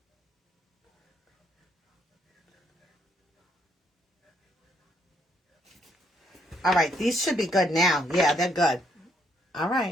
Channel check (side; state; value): both; normal; correlation 0.72